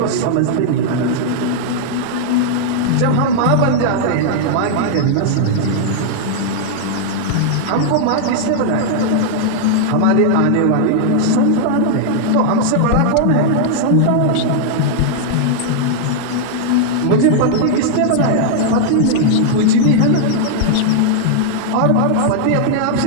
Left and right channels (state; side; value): different; both; correlation -0.01